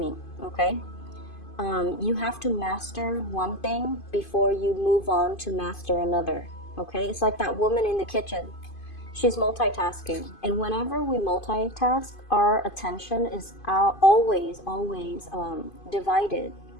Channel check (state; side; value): late; right; 2.5 ms